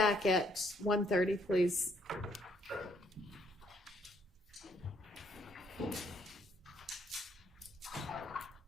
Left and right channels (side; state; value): both; normal; correlation 0.68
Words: at 1:30, please.